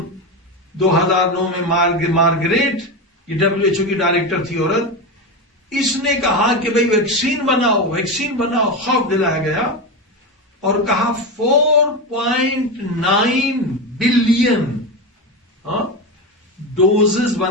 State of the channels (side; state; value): both; normal; correlation 0.17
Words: 2009 میں مارگریٹ، یہ WHO کی ڈائریکٹر تھی عورت، اس نے کہا کہ بھئی ویکسین بناؤ، خوف دلایا گیا اور کہا 4.9 بلین ڈوزز